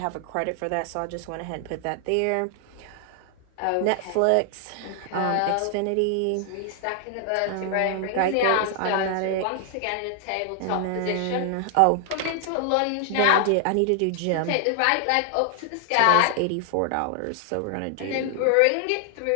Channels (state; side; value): different; both; correlation 0.00